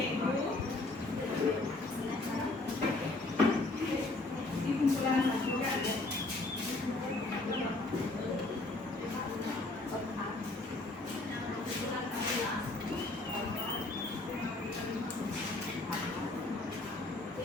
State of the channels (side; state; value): right; quieter; 3.0 dB